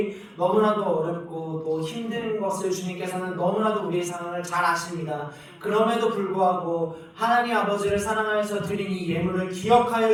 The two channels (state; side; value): identical; both; correlation 1.00